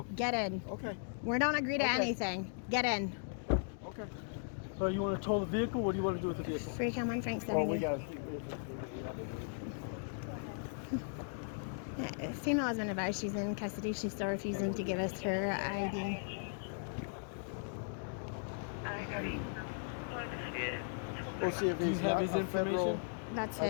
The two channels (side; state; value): right; silent; digital silence